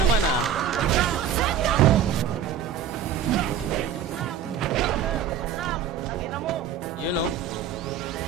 ah. You know.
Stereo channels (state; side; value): quieter; left; 8.4 dB